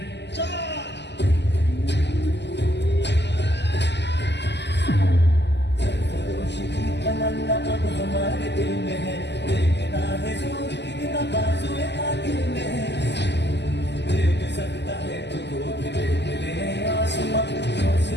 तमन्ना अब हमारे दिल में है, देखना है जोर कितना बाजुए कातिल में है। देख सकता है तुझको भी देख ले आसमां,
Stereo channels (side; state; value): right; late; 0.50 ms